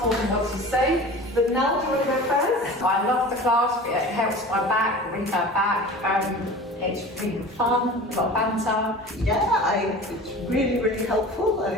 told them what to say, but Nell, do you want to go first? I love the class, it helps my back, brings my back, it's really fun, a lot of banter. Yeah, it's really helpful. I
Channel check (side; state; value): both; normal; correlation 0.38